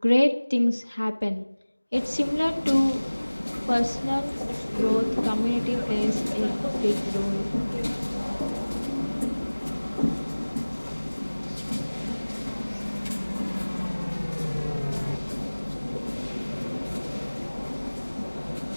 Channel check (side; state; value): both; inverted; correlation -1.00